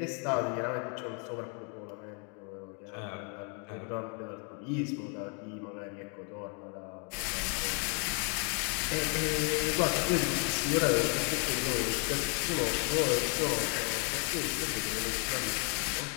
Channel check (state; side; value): quieter; right; 37.5 dB